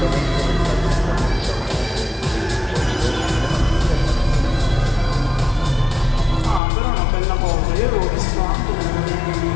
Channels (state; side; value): drops out; right; at 6.6 s